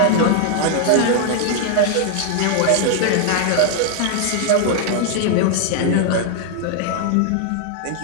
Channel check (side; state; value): both; different; correlation 0.00